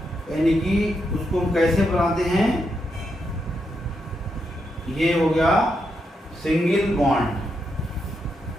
यानी कि उसको हम कैसे बनाते हैं। ये हो गया सिंगल बॉन्ड।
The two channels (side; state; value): both; normal; correlation 0.82